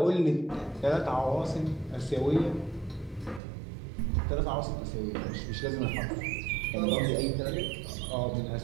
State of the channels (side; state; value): left; drops out; at 3.4 s